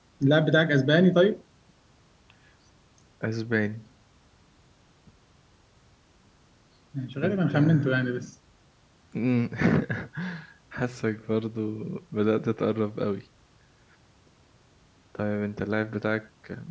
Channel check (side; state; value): both; identical; correlation 1.00